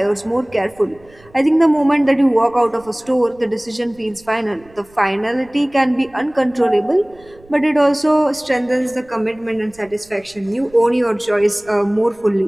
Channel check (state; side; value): noise; right; rumble, 27 dB below the sound